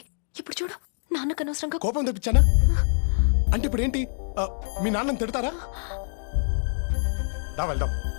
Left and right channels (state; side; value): silent; right; digital silence